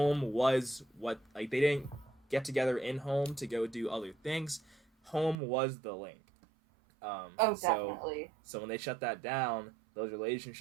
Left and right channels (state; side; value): drops out; left; at 5.4 s